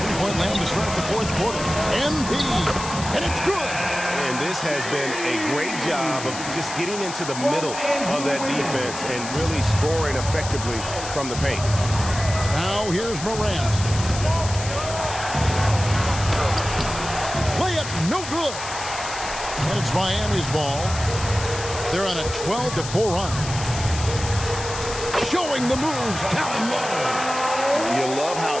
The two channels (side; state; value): left; noise; hiss, 9 dB below the sound